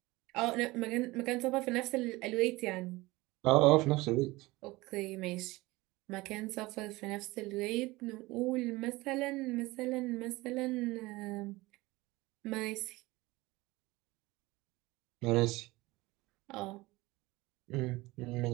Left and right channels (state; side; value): quieter; left; 20.8 dB